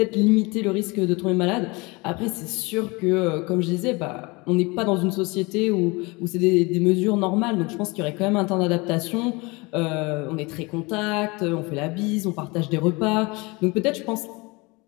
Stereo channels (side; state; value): right; quieter; 25.7 dB